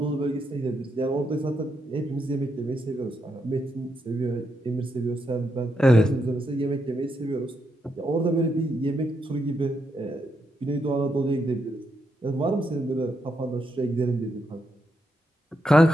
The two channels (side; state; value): both; normal; correlation 0.81